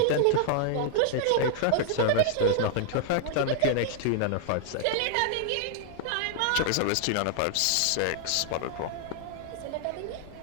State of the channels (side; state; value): both; different; correlation -0.01